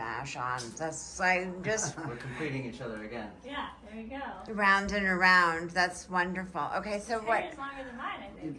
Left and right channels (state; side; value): identical; both; correlation 1.00